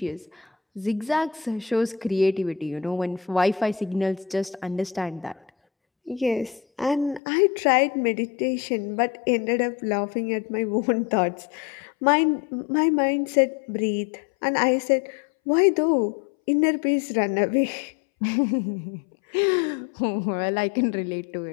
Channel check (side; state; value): right; drops out; at 7.2 s